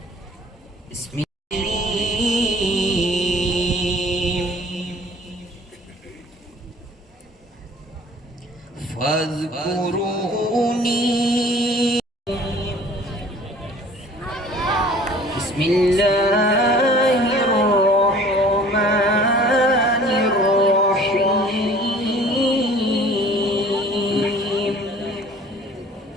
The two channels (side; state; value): both; normal; correlation 0.50